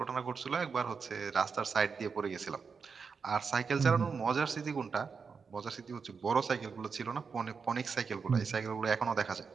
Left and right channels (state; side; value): quieter; left; 5.5 dB